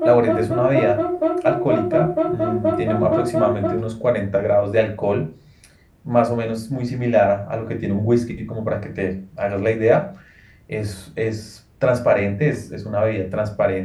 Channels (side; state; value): both; identical; correlation 1.00